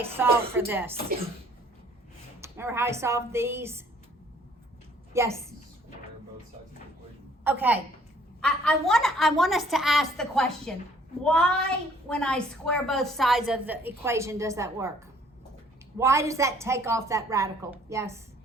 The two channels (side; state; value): both; normal; correlation 0.59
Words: solve for this? Remember how I solved these? Yes? Square both sides of the equation. Okay. I want us to ask the question, why, when I square both sides of the equation, does that work? Why does that take off that radical? Yes?